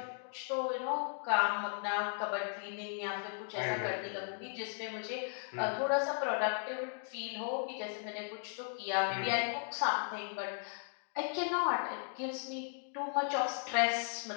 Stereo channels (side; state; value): right; silent; 53 dB below the other